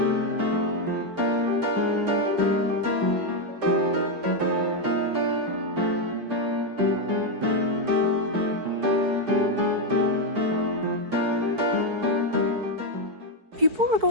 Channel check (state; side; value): late; left; 4.6 ms